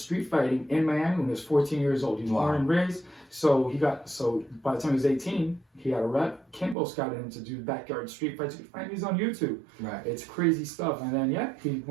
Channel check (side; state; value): left; drops out; at 6.8 s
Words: fighting in Miami when he was 14 years old. He was born and raised. So by the time he was 18, he had a rep. Kimbo scouted him to do backyard street fights. You can find these on YouTube. Right. It's crazy stuff. And then he